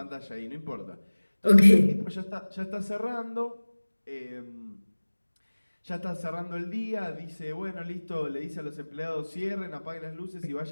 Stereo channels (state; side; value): inverted; both; correlation -1.00